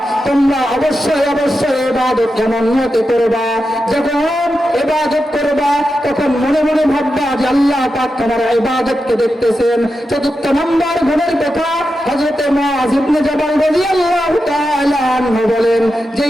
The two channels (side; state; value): both; normal; correlation 0.89